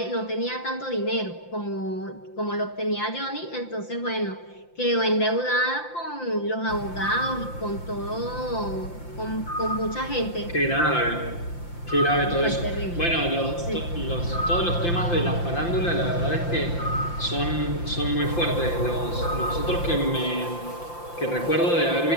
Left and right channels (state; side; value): late; right; 5.8 ms